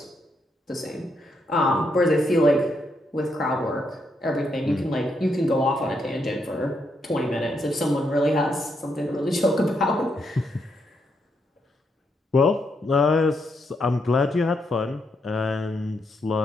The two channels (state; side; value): normal; both; correlation 0.79